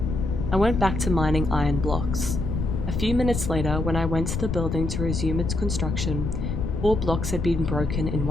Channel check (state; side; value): noise; left; rumble, 2 dB below the sound